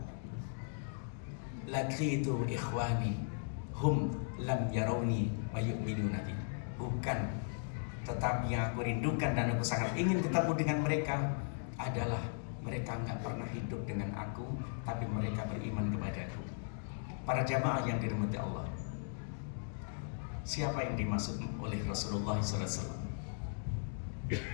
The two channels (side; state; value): right; silent; digital silence